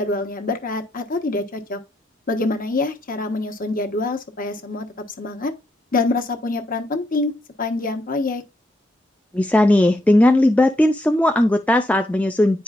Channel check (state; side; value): normal; both; correlation 0.78